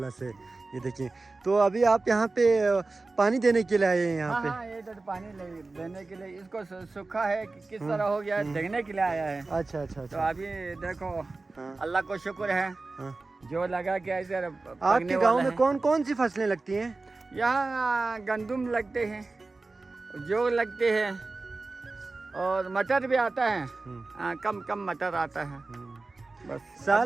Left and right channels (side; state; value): left; quieter; 3.5 dB